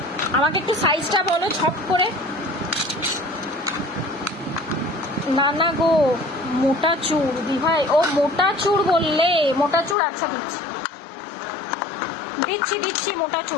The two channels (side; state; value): right; drops out; at 10.0 s